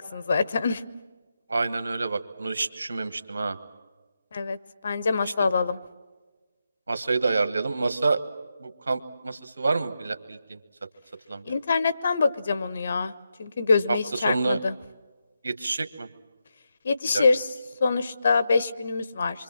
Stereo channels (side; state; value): both; inverted; correlation -0.86